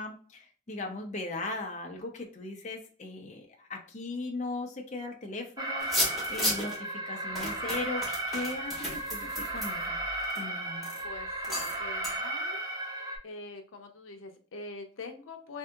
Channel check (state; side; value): normal; both; correlation 0.03